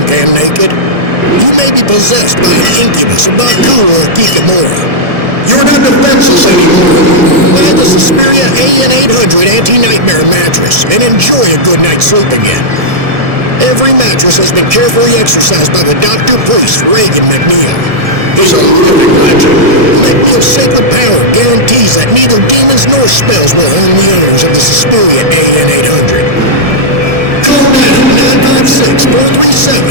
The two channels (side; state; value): left; late; 1.7 ms